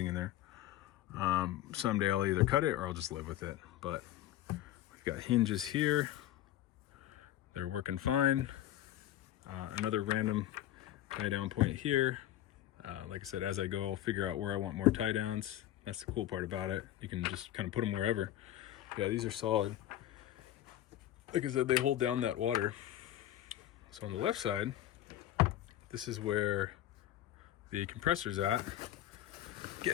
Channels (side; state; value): right; quieter; 13.0 dB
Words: in there. Someday I'll either cut it or I'll just live with it. But we've got hinges here. They're working fine. Another random tie down point here. Like I said, as I go, I'll figure out where I want more tie downs. That's the cool part about it. You can just kind of put them wherever. Yeah, these are solid. Like I said, they hold down that water. So on the left side, this is where the compressor's at.